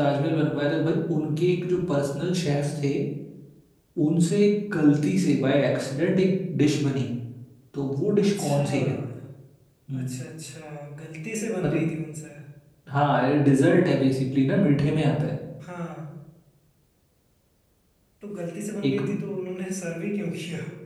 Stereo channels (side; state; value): both; identical; correlation 1.00